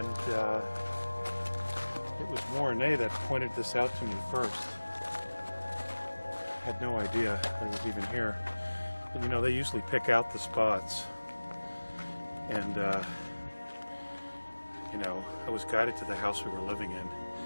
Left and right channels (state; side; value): inverted; both; correlation -1.00